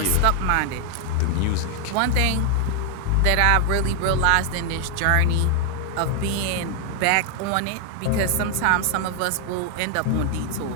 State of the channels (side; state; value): both; different; correlation 0.00